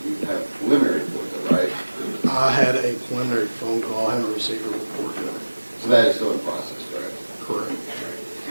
You have a preliminary report, though, right? I had a preliminary phone call. I haven't received a report yet. So that is still in process, correct? Correct.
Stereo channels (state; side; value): inverted; both; correlation -1.00